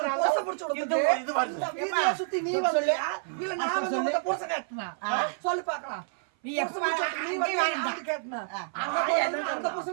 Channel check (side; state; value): left; silent; 56 dB below the other